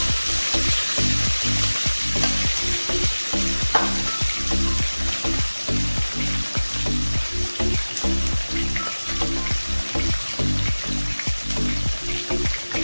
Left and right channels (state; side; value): inverted; both; correlation -1.00